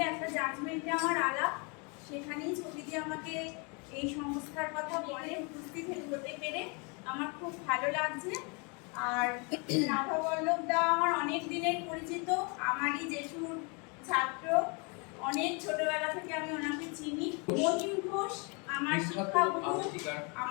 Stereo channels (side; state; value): right; quieter; 33.0 dB